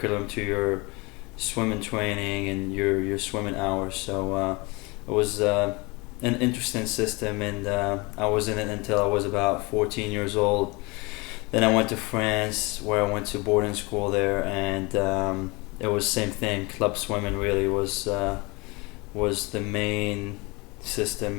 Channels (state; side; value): quieter; right; 26.3 dB